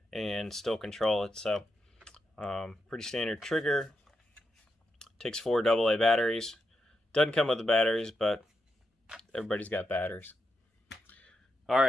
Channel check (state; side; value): normal; both; correlation 0.85